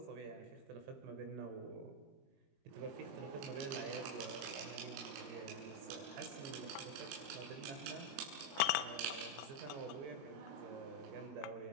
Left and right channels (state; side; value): late; left; 22 ms